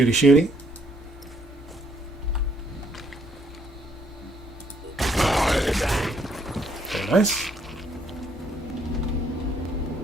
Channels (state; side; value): normal; both; correlation 0.68